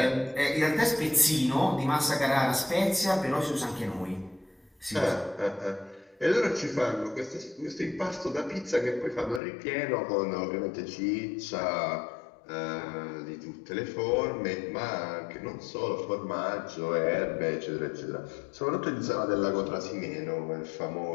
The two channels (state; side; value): drops out; right; at 9.4 s